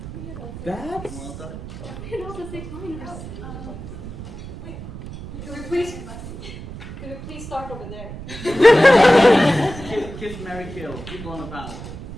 That's... Well done. We can also say minors. Could we please start over there? Kiss, marry, kill. People on the panel.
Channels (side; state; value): right; noise; rumble, 11 dB below the sound